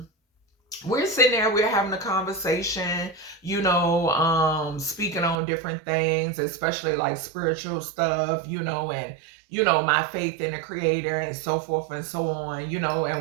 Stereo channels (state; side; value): drops out; left; at 5.4 s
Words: we're sitting there, we're having a conversation, speaking on different things, especially like spiritual stuff, and my faith in the creator and so forth and so on,